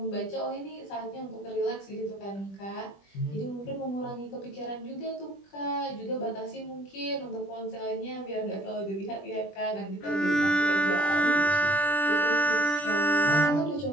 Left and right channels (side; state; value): right; late; 20 ms